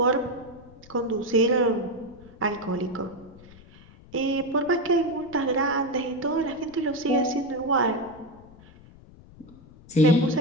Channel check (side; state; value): left; noise; rumble, 22 dB below the sound